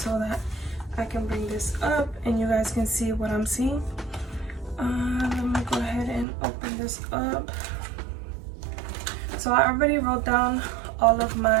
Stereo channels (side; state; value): left; drops out; at 6.2 s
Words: that I can bring this up and you guys can see what I'm seeing. Let me go ahead and open this up. So I already wrote down all of